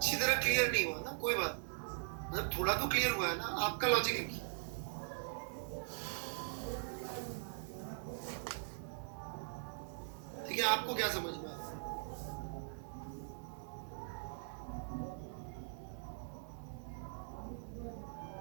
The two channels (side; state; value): left; silent; 50 dB below the other